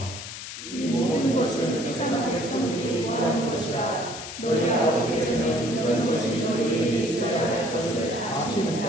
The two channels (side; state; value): left; noise; hiss, 10 dB below the sound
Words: 이 모든 것은 세상 백성들이 구하는 것이라. 너희 아버지께서는 이런 것이 너희에게 있어야 할 것을